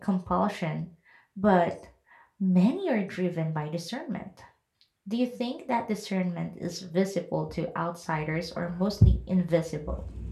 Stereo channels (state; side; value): identical; both; correlation 1.00